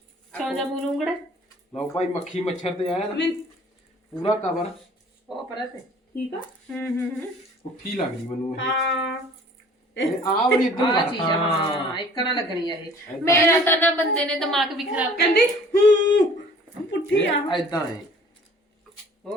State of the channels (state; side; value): normal; both; correlation 0.51